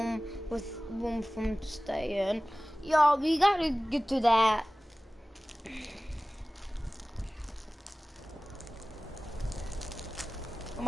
with room from staying. Yo, we gotta get to that. I'm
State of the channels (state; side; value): normal; both; correlation 0.98